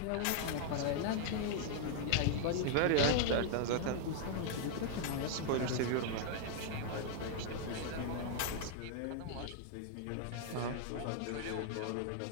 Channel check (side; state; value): both; different; correlation -0.01